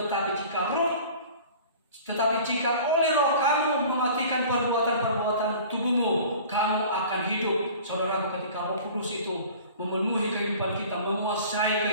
tetapi jika oleh roh kamu mematikan perbuatan-perbuatan tubuhmu, kamu akan hidup. Saudaraku, ketika Roh Kudus itu memenuhi kehidupan kita, menguasai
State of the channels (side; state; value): both; inverted; correlation -0.44